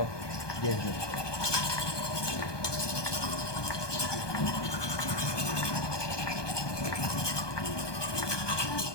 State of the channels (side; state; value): right; late; 1.2 ms